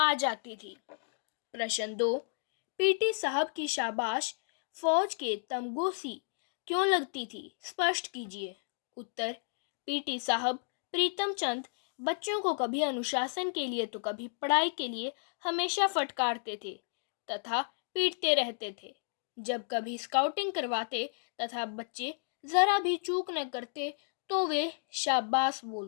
जाती थी। प्रश्न 2, पीटी साहब की शाबाश फौज के तमगोसी क्यों लगती थी? स्पष्ट कीजिए। उत्तर, पीटी साहब प्रीतम चंद बच्चों को कभी अनुशासन के लिए तो कभी पढ़ाई के लिए हमेशा फटकारते थे तथा पीटते रहते थे। जब कभी स्काउटिंग करवाते तथा बच्चे जरा भी चूक न करते तो वे शाबाश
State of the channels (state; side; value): silent; right; digital silence